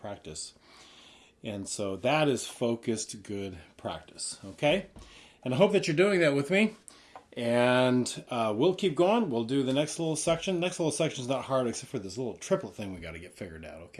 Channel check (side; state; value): both; identical; correlation 1.00